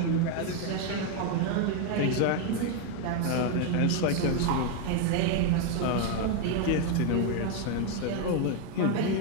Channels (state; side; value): different; both; correlation 0.01